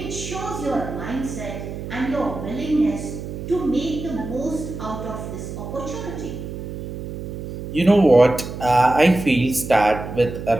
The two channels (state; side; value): noise; right; hum, 8 dB below the sound